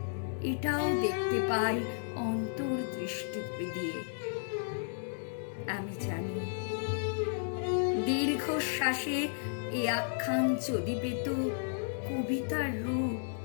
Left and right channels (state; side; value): silent; right; digital silence